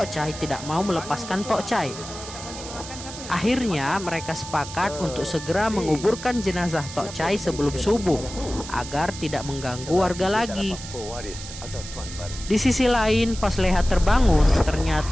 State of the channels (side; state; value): right; noise; hiss, 12 dB below the sound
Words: Chai tidak mau melepaskan Tok Chai. Akhirnya mereka sepakat untuk segera menguburkan jenazah Tok Chai sebelum subuh agar tidak mengganggu warga lagi. Di sisi lain, pas Leha terbangun,